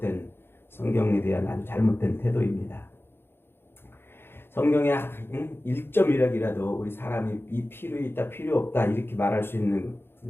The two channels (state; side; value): late; right; 0.11 ms